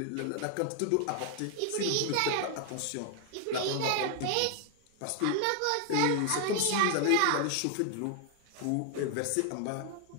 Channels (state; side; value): different; both; correlation 0.00